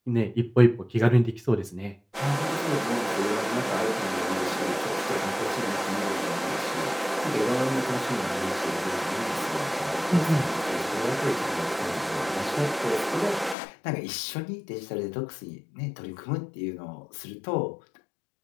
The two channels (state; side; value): drops out; right; at 13.6 s